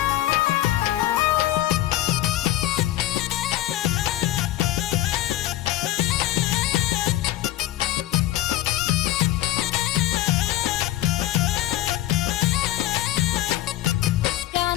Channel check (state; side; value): quieter; right; 14.6 dB